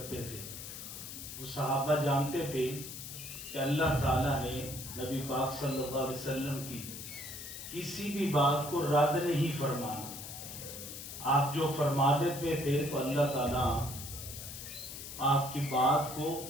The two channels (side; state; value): left; noise; hiss, 10 dB below the sound